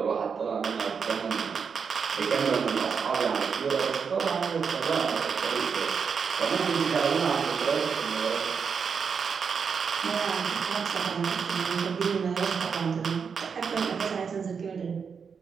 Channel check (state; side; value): quieter; left; 6.1 dB